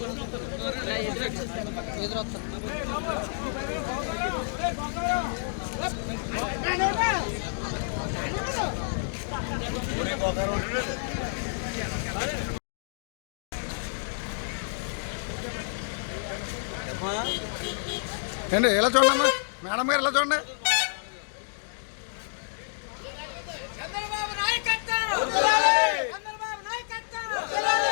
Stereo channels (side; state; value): right; silent; digital silence